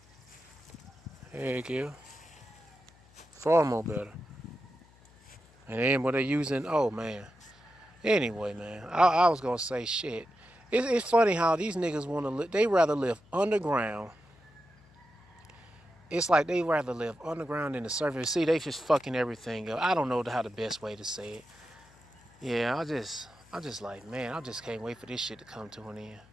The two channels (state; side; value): noise; left; hum, 27 dB below the sound